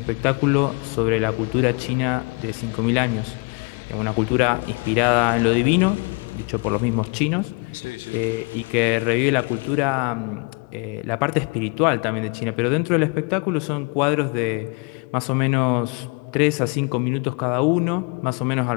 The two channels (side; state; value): right; quieter; 30.9 dB